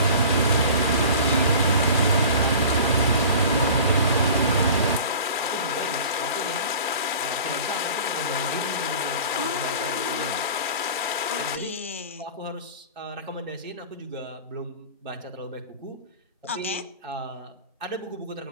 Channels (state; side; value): inverted; both; correlation -0.40